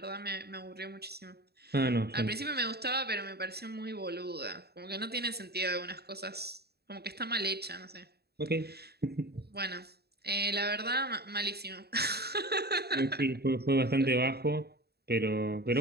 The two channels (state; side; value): late; left; 0.47 ms